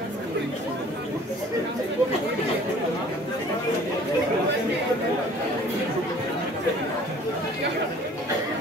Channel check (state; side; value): normal; both; correlation 0.51